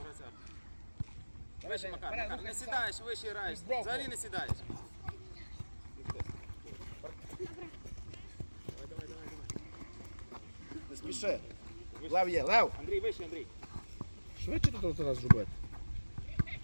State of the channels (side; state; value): both; inverted; correlation -1.00